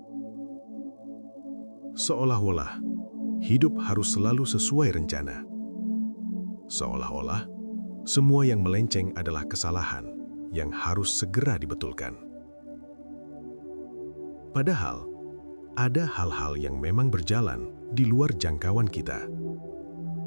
Seolah-olah hidup harus selalu sesuai rencana. Seolah-olah semua yang melenceng adalah kesalahan yang harus segera dibetulkan. Padahal, ada hal-hal yang memang berjalan di luar jangkauan kita,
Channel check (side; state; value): both; inverted; correlation -1.00